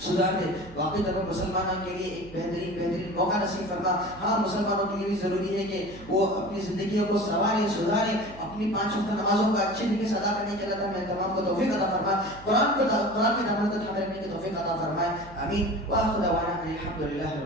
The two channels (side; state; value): right; noise; hum, 19 dB below the sound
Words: سدھار دے. واقعی طور پر مسلمانوں کے لیے ایک بہترین موقع نصیب فرما. ہاں, مسلمانوں کے لیے بھی ضروری ہے کہ وہ اپنی زندگیوں کو سنواریں, سدھاریں, اپنی 5 وقت نمازوں کا اچھے طریقے سے ادا کرنے کے. اللہ تعالیٰ ہمیں تمام کو توفیق عطا فرما, قرآن کے دامن کو تھامے رکھنے کی توفیق عطا فرمائے. آمین. وآخر دعوانا الحمد للہ